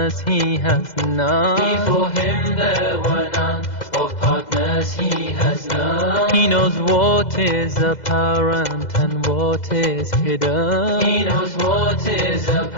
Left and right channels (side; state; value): right; late; 2.0 ms